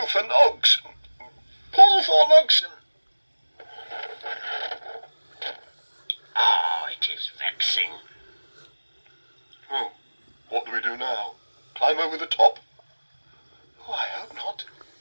for Nogs. Pull, Thornogson. Oh, it is vexing. Oh, what do we do now? Climb over the top? Oh, I hope not.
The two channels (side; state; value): both; inverted; correlation -1.00